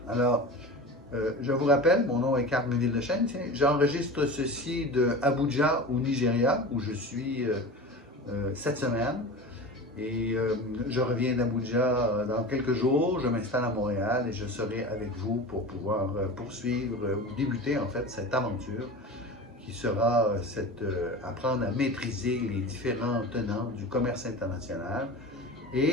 Alors, je vous rappelle, mon nom est Carl Méville-Deschênes. J'enregistre ceci de Abuja au Nigeria, où je suis cette semaine. Et je reviens d'Abuja dans quelques jours. Je m'installe à Montréal et je serai avec vous pour pouvoir poursuivre ou débuter en fait cette aventure qui sera apprendre à maîtriser les différents tenants du commerce international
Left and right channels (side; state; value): both; normal; correlation 0.32